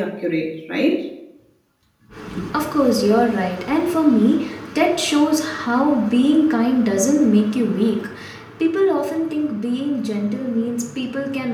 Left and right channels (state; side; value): identical; both; correlation 1.00